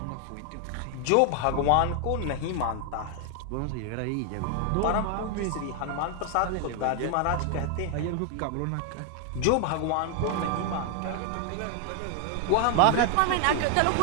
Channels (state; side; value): different; both; correlation 0.00